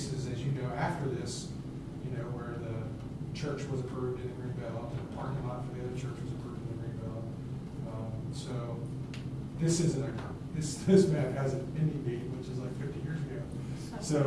as you know, after this, where the church was approved in the Greenbelt, and the parking lot for the other church was approved in the Greenbelt. So this map has an ending date, which is like 50 years ago.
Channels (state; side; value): identical; both; correlation 1.00